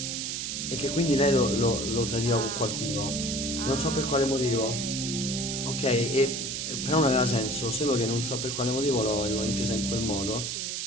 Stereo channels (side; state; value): right; noise; hiss, 3 dB below the sound